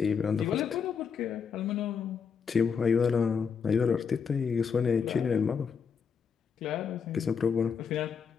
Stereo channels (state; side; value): quieter; right; 6.3 dB